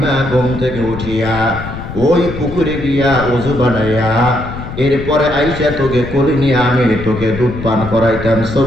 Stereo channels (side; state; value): left; noise; rumble, 9 dB below the sound